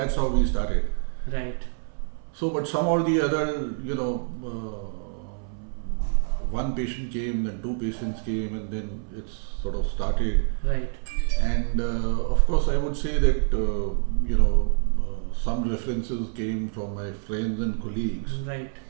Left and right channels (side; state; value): left; silent; 61 dB below the other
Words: how we started. Right. So, but some or the other, one patient came, then 2 patients came, and then it's sort of started. Right. And of course, I would say that some references came from my friends and colleagues. Right.